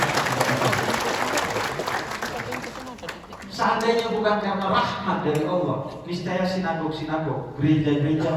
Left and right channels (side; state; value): both; identical; correlation 1.00